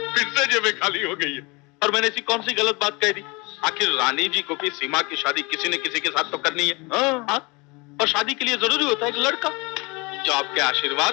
से जेबें खाली हो गई है। और मैंने ऐसी कौन सी गलत बात कह दी? आखिर रानी जी को भी सीमा की शादी किसी न किसी के साथ तो करनी है। और शादी के लिए जरूरी होता है एक लड़का, जो आपके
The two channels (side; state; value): right; quieter; 27.1 dB